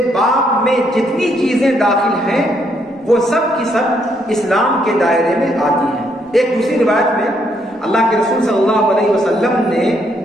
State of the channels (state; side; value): normal; both; correlation 0.73